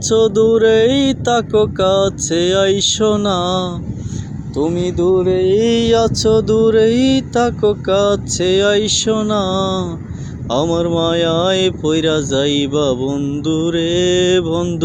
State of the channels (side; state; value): both; identical; correlation 1.00